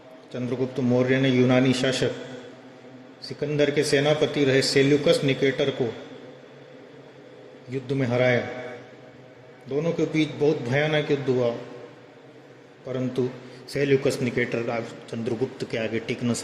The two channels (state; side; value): identical; both; correlation 1.00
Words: चंद्रगुप्त मौर्य ने यूनानी शासक सिकंदर के सेनापति रहे सेल्यूकस निकेटर को युद्ध में हराया। दोनों के बीच बहुत भयानक युद्ध हुआ, परंतु सेल्यूकस निकेटर चंद्रगुप्त के आगे टिक न